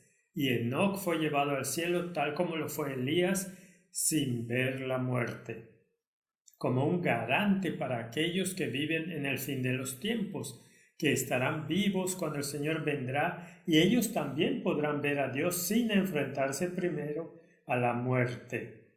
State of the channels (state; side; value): identical; both; correlation 1.00